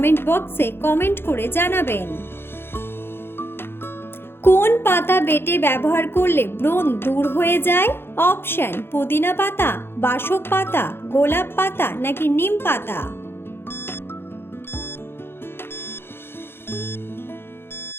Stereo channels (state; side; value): late; right; 0.11 ms